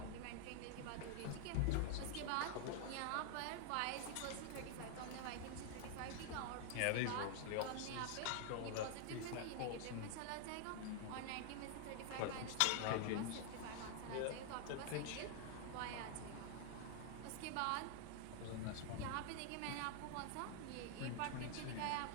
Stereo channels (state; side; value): different; both; correlation 0.00